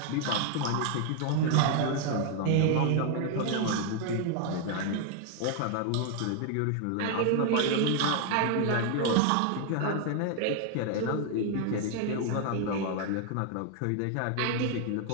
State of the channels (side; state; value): both; different; correlation 0.00